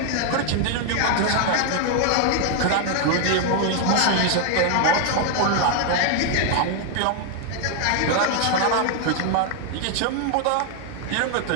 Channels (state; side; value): different; both; correlation 0.00